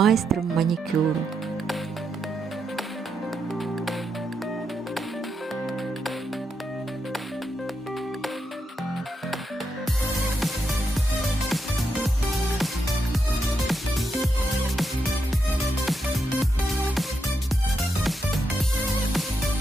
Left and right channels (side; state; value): both; normal; correlation 0.83